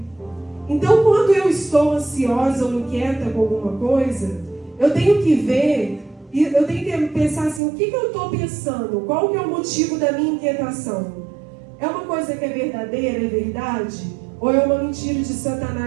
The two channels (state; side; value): drops out; left; at 7.6 s